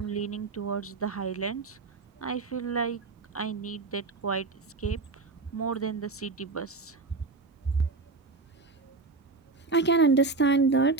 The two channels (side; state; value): left; quieter; 3.9 dB